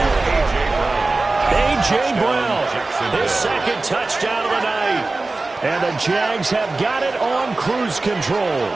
A.J. Brown, his second touchdown of the night. And the Jags have got it on cruise control.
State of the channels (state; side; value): quieter; left; 3.3 dB